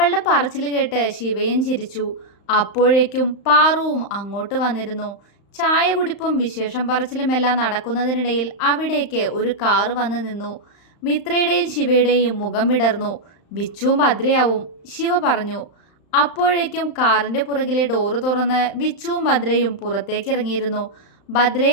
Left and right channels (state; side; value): late; right; 35 ms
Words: പറച്ചിൽ കേട്ട് ശിവയും ചിരിച്ചു. അപ്പോഴേക്കും പാറുവും അങ്ങോട്ട് വന്നിരുന്നു. ചായ കുടിപ്പും വിശേഷം പറച്ചിലുമെല്ലാം നടക്കുന്നതിനിടയിൽ അവിടേക്ക് ഒരു കാറ് വന്ന് നിന്നു. മിത്രയുടെയും ശിവയുടെയും മുഖം വിടർന്നു. വിച്ചുവും ഭദ്രയാവും, ശിവ പറഞ്ഞു. അപ്പോഴേക്കും കാറിന്റെ പുറകിലെ ഡോറ് തുറന്ന് വിച്ചുവും ഭദ്രയും പുറത്തേക്ക് ഇറങ്ങിയിരുന്നു.